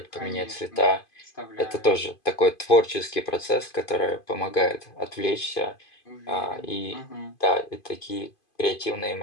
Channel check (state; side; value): late; right; 2.5 ms